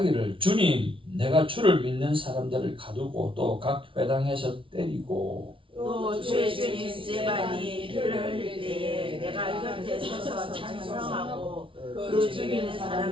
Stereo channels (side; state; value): left; late; 0.25 ms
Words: 주님 내가 주를 믿는 사람들을 가두고 또 각 회당에서 때리고 또 주의 주인 스데반이 피를 흘릴 때에 내가 곁에 서서 찬송하고 그 죽이는